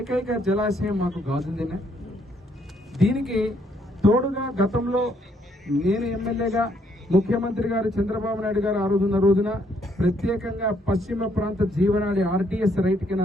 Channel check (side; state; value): both; normal; correlation 0.70